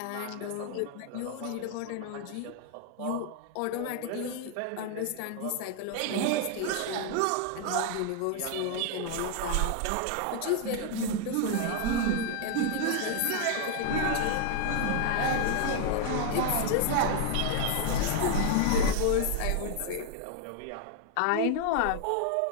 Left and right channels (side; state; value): both; different; correlation 0.00